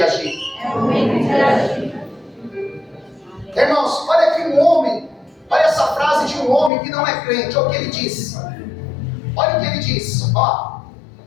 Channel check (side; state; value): right; drops out; at 6.7 s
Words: agir. É momento de agir. Irmãos, olha aqui um homem, olha essa frase de um homem que não é crente, olha o que ele disse. Olha o que ele disse, ó.